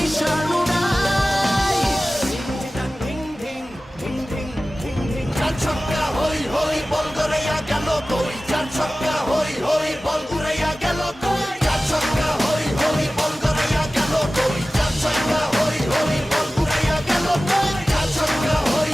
উড়াই। Ding ding ding ding ding ding. চার ছক্কা হই হই, বল গড়াইয়া গেল কই। চার ছক্কা হই হই, বল উড়াইয়া গেল কই। চার ছক্কা হই হই, বল গড়াইয়া গেল কই। চার ছক্কা হই হই, বল উড়াইয়া গেল কই। চার ছক্কা হই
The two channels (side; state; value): both; normal; correlation 0.96